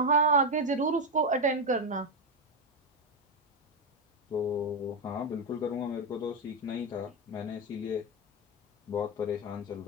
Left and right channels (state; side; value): normal; both; correlation 0.07